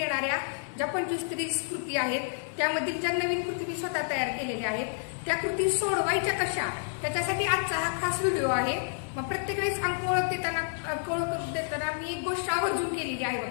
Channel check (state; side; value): silent; right; digital silence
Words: ज्या 25 ते 30 कृती आहेत त्यामधील ज्या नवीन कृती मी स्वतः तयार केलेल्या आहेत त्या कृती सोडवायच्या कशा, त्याच्यासाठी आजचा हा खास व्हिडिओ आहे। मग प्रत्येक वेळेस अंक ओळख देताना मी एक गोष्ट आवर्जून केलेली आहे